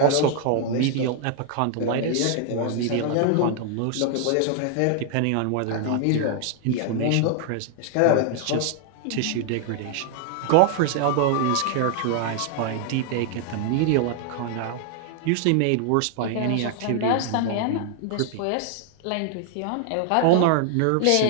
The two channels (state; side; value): different; both; correlation 0.00